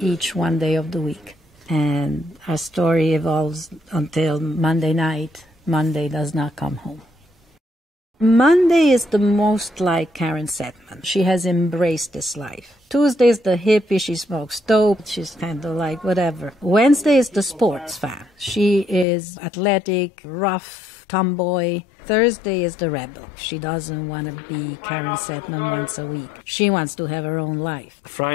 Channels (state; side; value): drops out; right; at 19.1 s